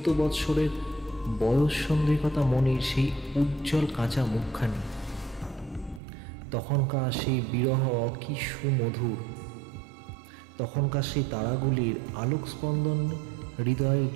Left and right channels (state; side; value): drops out; left; at 6.0 s